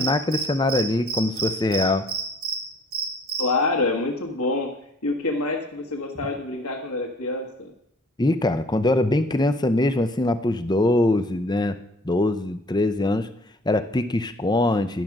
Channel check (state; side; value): normal; both; correlation 0.55